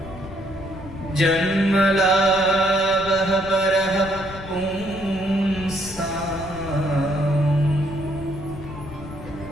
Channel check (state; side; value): noise; left; rumble, 14 dB below the sound